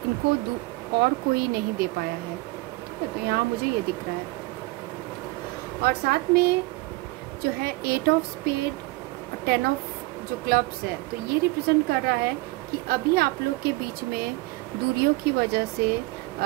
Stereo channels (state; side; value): quieter; left; 22.3 dB